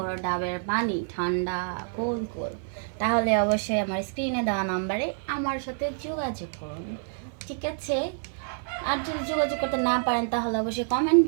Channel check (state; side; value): silent; left; 56 dB below the other